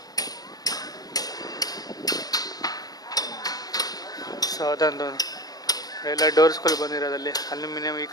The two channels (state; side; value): late; right; 0.18 ms